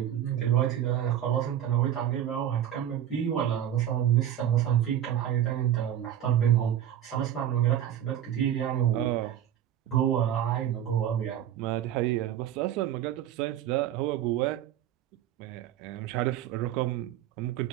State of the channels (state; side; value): quieter; left; 10.9 dB